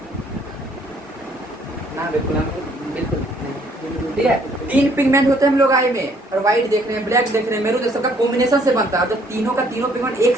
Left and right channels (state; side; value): normal; both; correlation 0.63